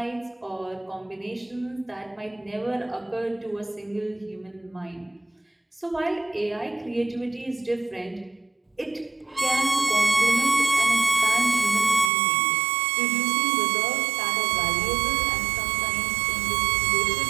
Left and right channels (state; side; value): drops out; left; at 12.1 s